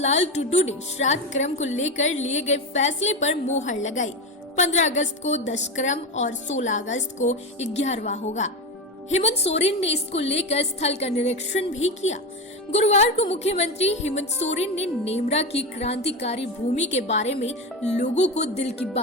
टुडू ने श्राद्ध क्रम को लेकर लिए गए फैसले पर मोहर लगाई। 15 अगस्त को 10 क्रम और 16 अगस्त को 11वां होगा। हेमंत सोरेन ने इसको लेकर स्थल का निरीक्षण भी किया। गुरुवार को मुख्यमंत्री हेमंत सोरेन ने नेमरा की क्रांतिकारी भूमि के बारे में लोगों को दिल की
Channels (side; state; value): both; normal; correlation 0.18